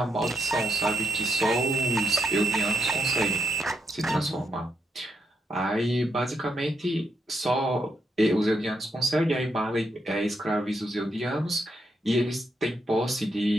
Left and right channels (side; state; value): both; normal; correlation 0.79